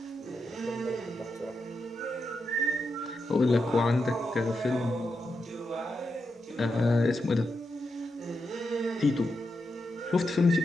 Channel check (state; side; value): normal; both; correlation 0.86